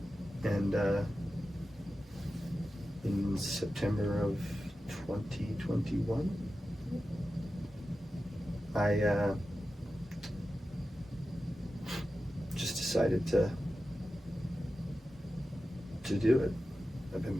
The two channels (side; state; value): both; normal; correlation 0.93